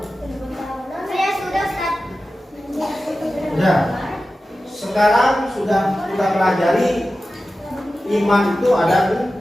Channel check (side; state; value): both; normal; correlation 0.94